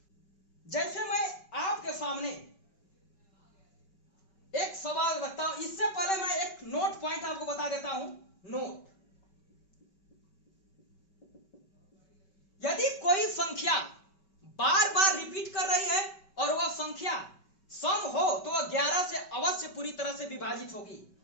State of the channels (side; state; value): right; late; 5.2 ms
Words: जैसे मैं आपके सामने एक सवाल रखता हूं, इससे पहले मैं एक नोट पॉइंट आपको बता देता हूं। नोट, यदि कोई संख्या बार बार रिपीट कर रही है और वह संख्या सम हो तो वह 11 से अवश्य पूरी तरह से विभाजित होगी।